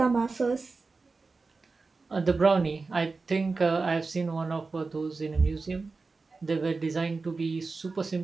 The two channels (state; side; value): quieter; left; 4.0 dB